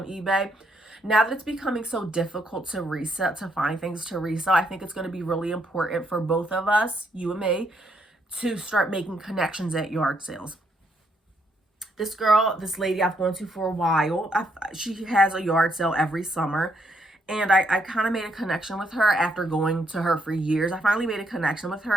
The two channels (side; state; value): both; normal; correlation 0.74